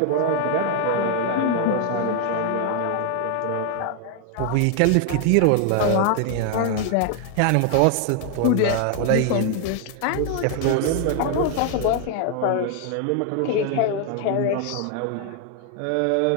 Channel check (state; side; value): different; both; correlation 0.00